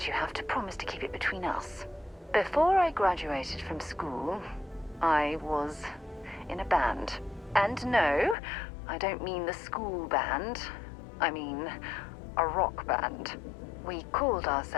you have to promise to keep it between us. Before I graduated from school, I was in a band. And no, I don't mean the school band. I mean a rock band. We called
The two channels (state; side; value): drops out; right; at 8.3 s